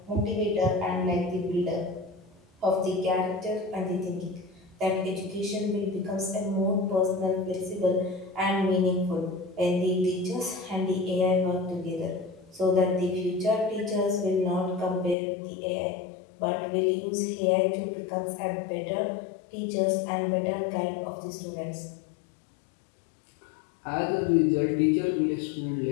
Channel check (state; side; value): drops out; right; at 15.2 s